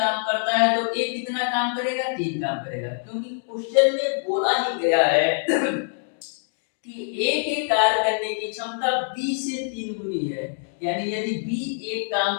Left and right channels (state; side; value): silent; right; digital silence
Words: करता है तो ए कितना काम करेगा, 3 काम करेगा, क्योंकि क्वेश्चन में बोला ही गया है कि ए के कार्य करने की क्षमता बी से 3 गुनी है। यानी यदि बी एक काम